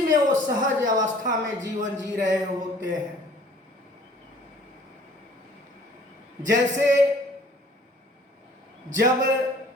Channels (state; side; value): normal; both; correlation 0.53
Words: में वो सहज अवस्था में जीवन जी रहे होते हैं। जैसे जब